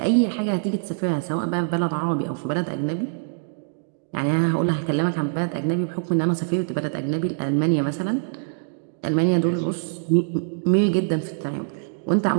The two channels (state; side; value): silent; left; digital silence